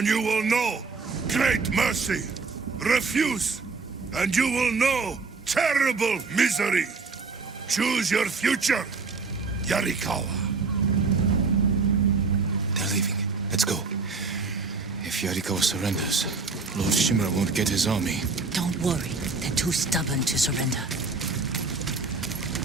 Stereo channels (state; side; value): quieter; left; 4.3 dB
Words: you will know great mercy. Refuse, and you will know terrible misery. Choose your future, Yarikawa. They're leaving. Let's go. If Yarikawa surrenders, Lord Shimura won't get his army. Don't worry. They're too stubborn to surrender.